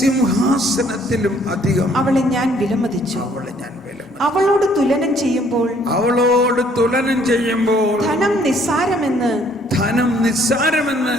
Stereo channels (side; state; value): both; normal; correlation 0.62